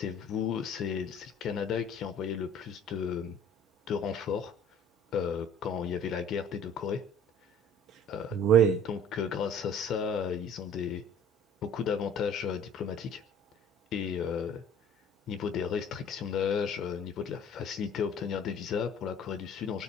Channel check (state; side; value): normal; both; correlation 0.50